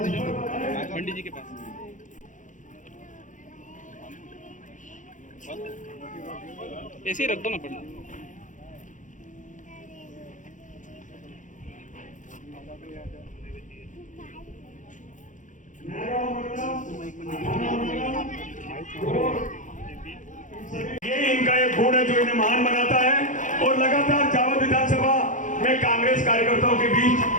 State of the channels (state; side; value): late; right; 0.37 ms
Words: है, पंडित जी के पास। ऐसे ही रख दो ना पंडित। ये इनका एक गुण है जो इन्हें महान बनाता है और लगातार जावद विधानसभा में कांग्रेस कार्यकर्ताओं के